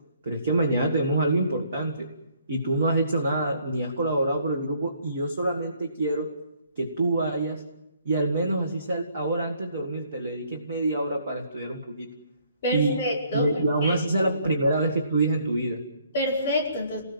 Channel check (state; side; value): inverted; both; correlation -0.65